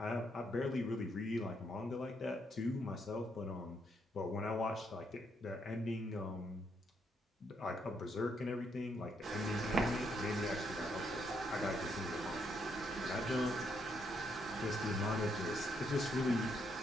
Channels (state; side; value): normal; both; correlation 0.75